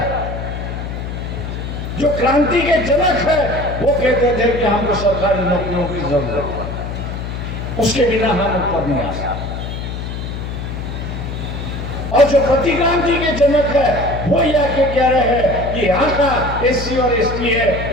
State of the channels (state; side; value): noise; left; hum, 6 dB below the sound